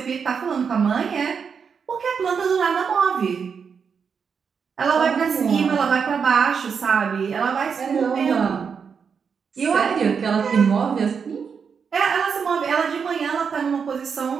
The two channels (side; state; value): left; quieter; 6.3 dB